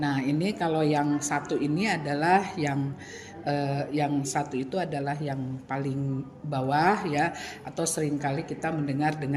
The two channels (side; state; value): both; identical; correlation 1.00